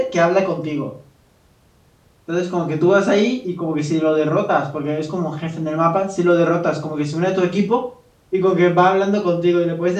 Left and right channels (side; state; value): both; identical; correlation 1.00